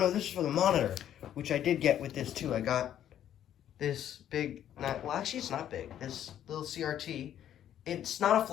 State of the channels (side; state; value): right; quieter; 10.7 dB